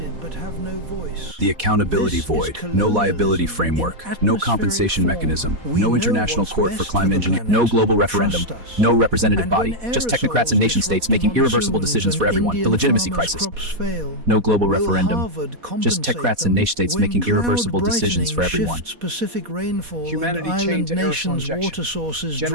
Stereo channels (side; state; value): left; late; 4.1 ms